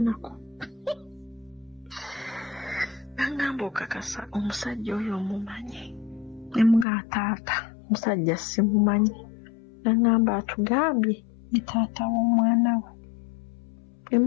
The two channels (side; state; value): right; drops out; at 6.9 s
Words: nangamba okakasa omusajja oyo omumanyi nemugamba taata omusajja simumanyi nangamba atugambye ni taata w'omwana we